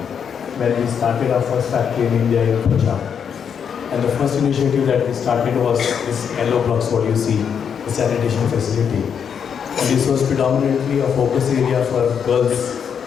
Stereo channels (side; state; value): right; quieter; 7.4 dB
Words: when we started our first factory in India in Punjab. And the first initiative that we started was this yellow blocks, what you see, the sanitation facility. And this was predominantly a focus area for girls.